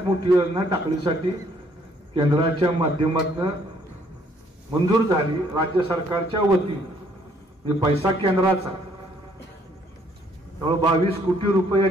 मोठी योजना टाकळीसाठी केंद्राच्या माध्यमातून मंजूर झाली. राज्य सरकारच्या वतीने पैसा केंद्राचा 22 कोटी रुपये या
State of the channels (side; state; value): both; normal; correlation 0.65